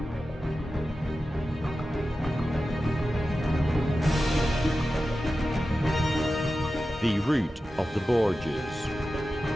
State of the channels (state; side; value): normal; both; correlation 0.93